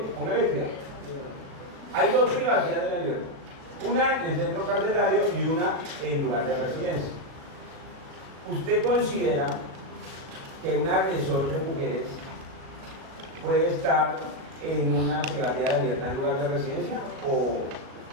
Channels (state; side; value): late; left; 37 ms